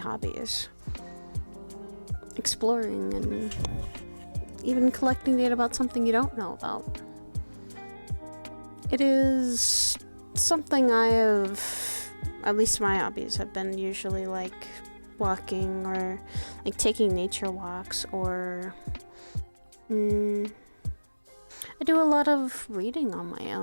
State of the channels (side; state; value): both; inverted; correlation -1.00